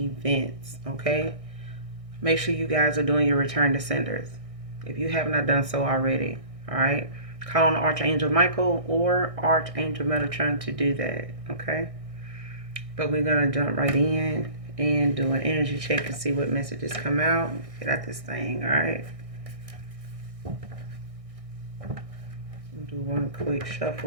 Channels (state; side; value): late; left; 1.6 ms